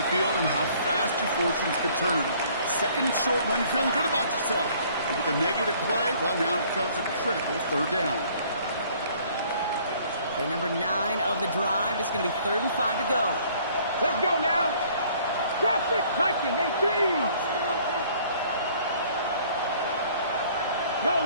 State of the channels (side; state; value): both; inverted; correlation -0.57